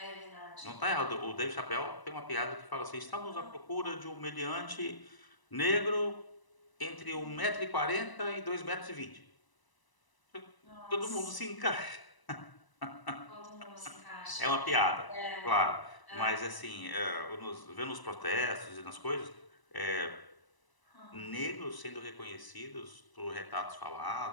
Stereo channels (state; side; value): late; right; 1.0 ms